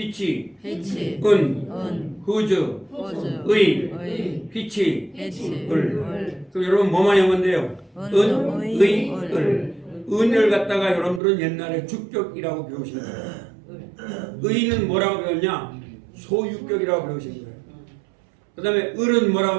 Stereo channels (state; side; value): drops out; left; at 11.2 s